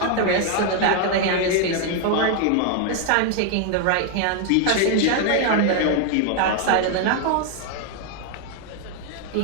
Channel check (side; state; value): both; different; correlation 0.00